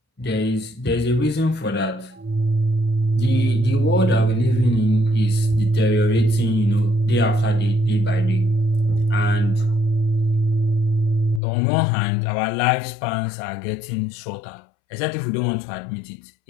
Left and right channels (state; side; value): drops out; right; at 11.4 s